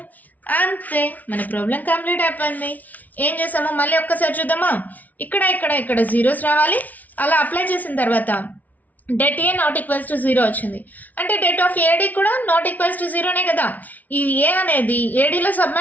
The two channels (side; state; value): right; late; 0.076 ms